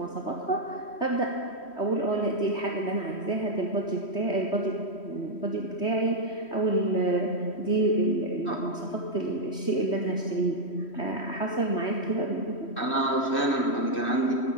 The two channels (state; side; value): late; right; 3.1 ms